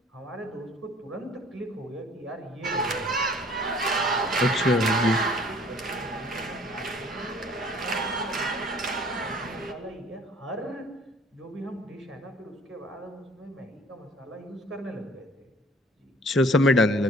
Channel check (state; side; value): normal; both; correlation 0.53